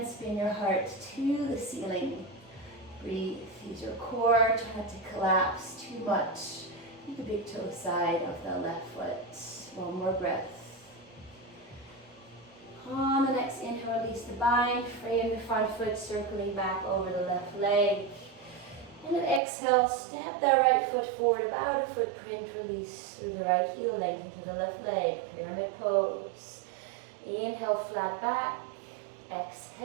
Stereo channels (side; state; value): left; drops out; at 19.4 s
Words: spin your heart to the ceiling. Breathe, use your core, try not to collapse too much. Keep the big toe side of the left foot. One more breath. On the next inhale, release the bind, frame the front foot, circling back over the left leg. And then exhale, step that right foot forward, about a footprint, release through the right heel, lengthen through the left leg, pyramid pose. Inhale, flat back.